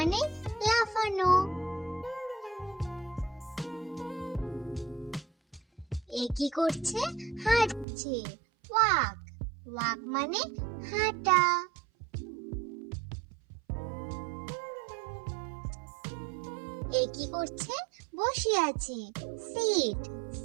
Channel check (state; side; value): drops out; left; at 7.9 s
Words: লাফানো। এ কি করছে? হাঁটছে। ওয়াক, ওয়াক মানে হাঁটা। এ কি করছে? বসে আছে। সিট,